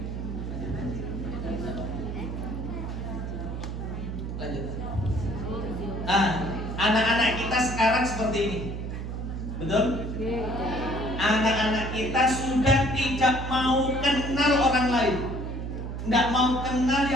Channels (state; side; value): noise; right; hum, 5 dB below the sound